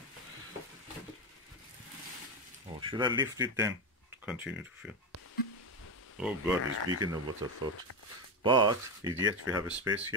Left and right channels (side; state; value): both; normal; correlation 0.13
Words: Oh, should I lift it then to continue to fill? Oh God, it's bigger than what I thought. But yet we have a space